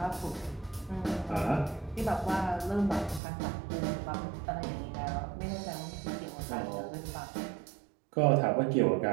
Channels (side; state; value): left; drops out; at 3.2 s